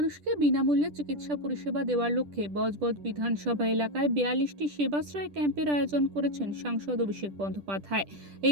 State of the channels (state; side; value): late; left; 10 ms